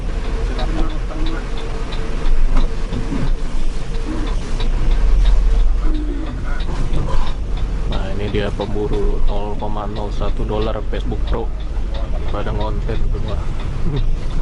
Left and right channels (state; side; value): identical; both; correlation 1.00